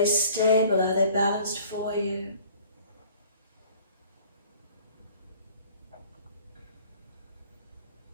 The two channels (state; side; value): inverted; both; correlation -0.51